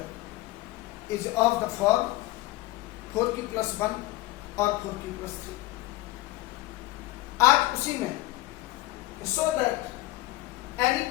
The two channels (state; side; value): quieter; right; 18.0 dB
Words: is of the form 4q+1 और 4q+3। आज उसी में so that any